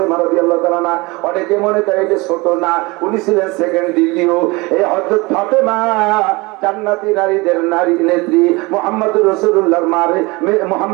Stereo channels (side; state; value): left; quieter; 24.4 dB